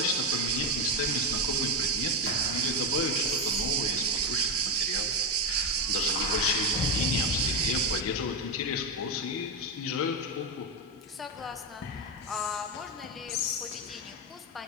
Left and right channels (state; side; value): normal; both; correlation 0.11